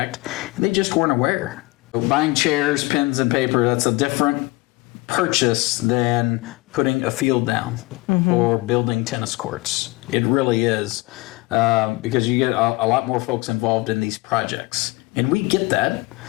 and they just weren't aware. So buying chairs, pens, and paper, that's a different purchase than putting a field down or building tennis courts. It really is, because you get a lot more folks involved in these projects. And we get that.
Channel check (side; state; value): right; quieter; 22.4 dB